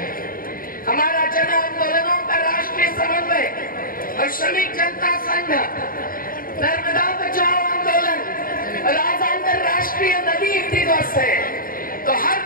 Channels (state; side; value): late; right; 0.41 ms